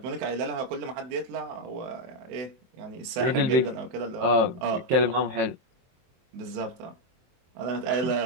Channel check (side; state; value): left; late; 23 ms